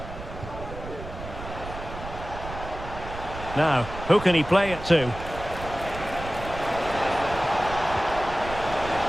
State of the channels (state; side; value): noise; right; rumble, 11 dB below the sound